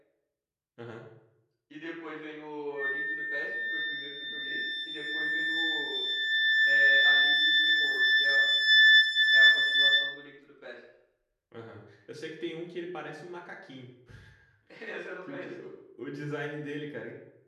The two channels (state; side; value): identical; both; correlation 1.00